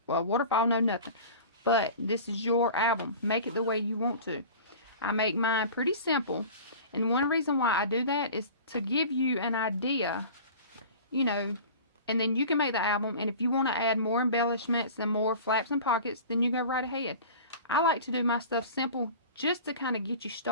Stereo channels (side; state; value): both; inverted; correlation -0.38